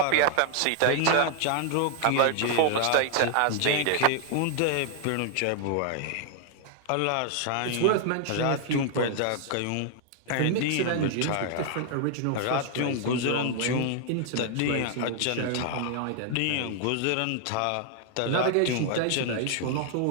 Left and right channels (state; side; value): different; both; correlation 0.00